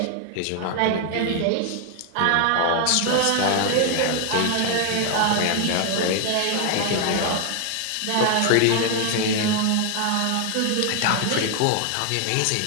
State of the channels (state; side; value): different; both; correlation 0.00